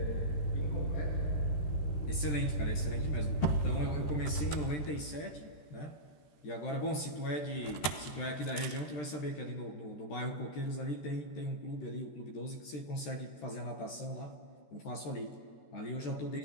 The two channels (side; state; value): right; late; 13 ms